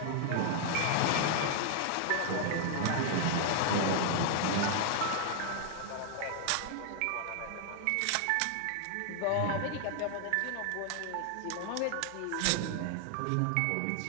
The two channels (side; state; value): both; different; correlation 0.00